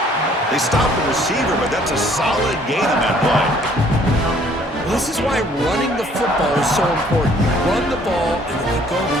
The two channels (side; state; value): both; normal; correlation 0.59